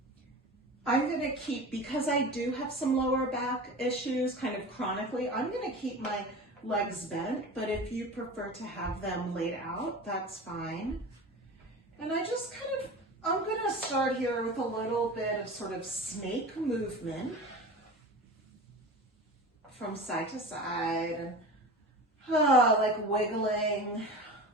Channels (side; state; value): both; normal; correlation 0.33